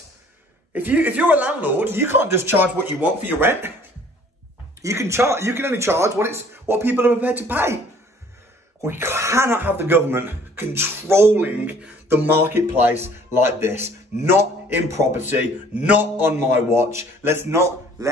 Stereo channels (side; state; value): both; normal; correlation 0.55